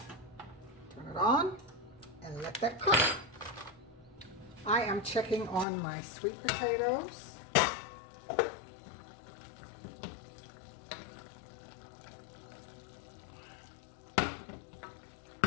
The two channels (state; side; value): drops out; right; at 5.7 s